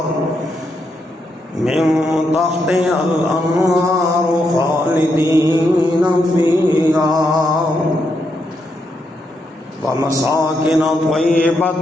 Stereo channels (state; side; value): normal; both; correlation 0.81